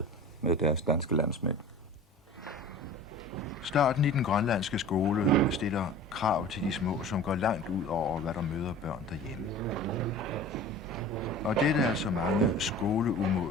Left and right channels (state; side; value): normal; both; correlation 0.39